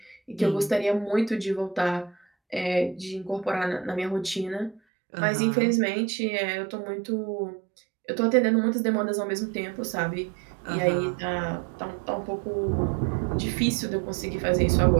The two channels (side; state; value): left; drops out; at 4.8 s